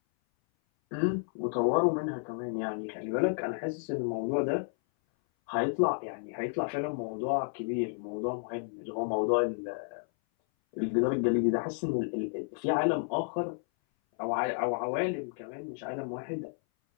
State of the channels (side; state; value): right; silent; 57 dB below the other